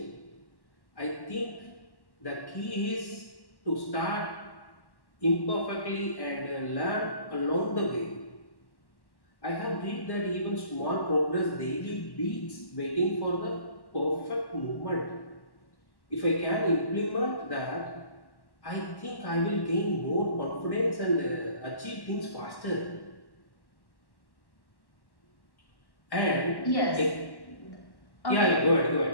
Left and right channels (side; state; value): right; late; 1.1 ms